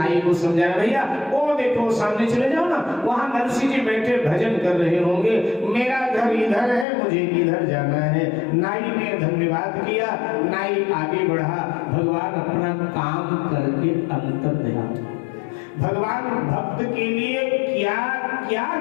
को समझाया, भैया वो देखो सामने चले जाओ ना, वहां नरसी जी बैठे भजन कर रहे होंगे, मेरा घर इधर है, मुझे इधर जाना है। नाई ने धन्यवाद किया, नाई आगे बढ़ा। भगवान अपना काम करके अंतर ध्यान, भगवान भक्त के लिए क्या क्या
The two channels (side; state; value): right; drops out; at 6.9 s